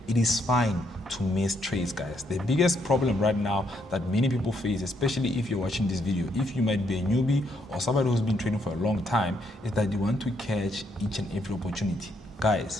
It is fine to miss trades, guys. The biggest problem right now that many people face, especially if you're watching this video, if you might be a newbie or somebody who's been trading for a long time, is that you want to catch each and every opportunity.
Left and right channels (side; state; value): both; normal; correlation 0.74